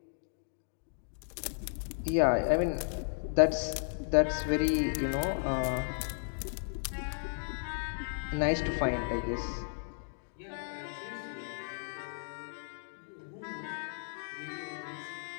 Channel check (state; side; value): silent; right; digital silence